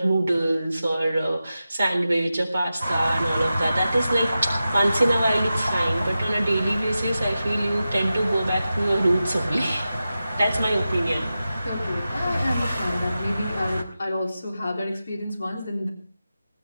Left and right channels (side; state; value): both; inverted; correlation -0.92